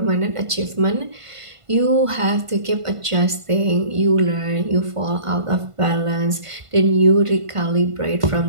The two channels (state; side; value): late; left; 1.5 ms